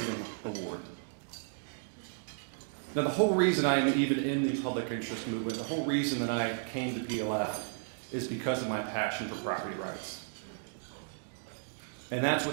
Award. Now, the whole reason I am even in the public interest movement, the whole reason that I came to PLF is because of my passion for property rights. And that's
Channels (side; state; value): left; silent; digital silence